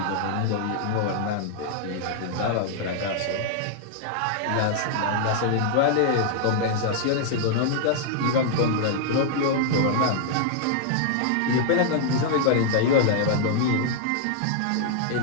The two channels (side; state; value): both; different; correlation -0.01